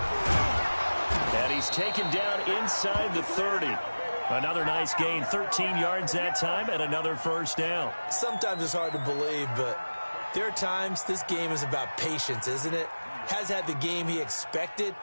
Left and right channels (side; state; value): both; inverted; correlation -1.00